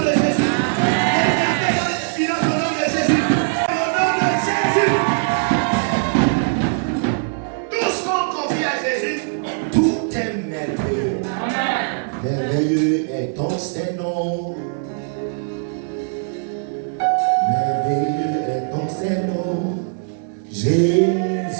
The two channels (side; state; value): left; silent; digital silence